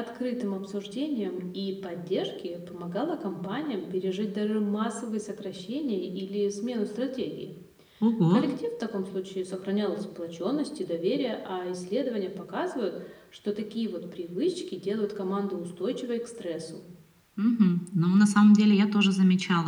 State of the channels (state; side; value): identical; both; correlation 1.00